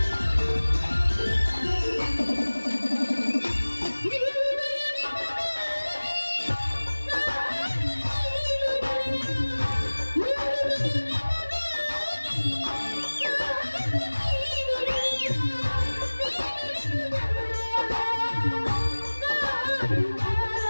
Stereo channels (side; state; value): both; inverted; correlation -1.00